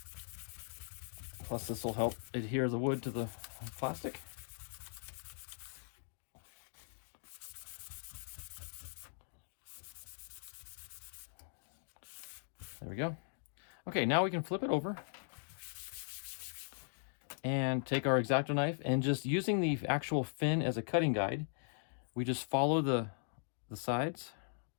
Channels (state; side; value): silent; right; digital silence